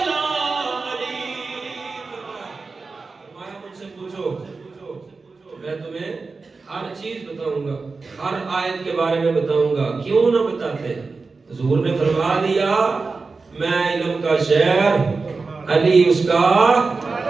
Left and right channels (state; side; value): quieter; left; 4.2 dB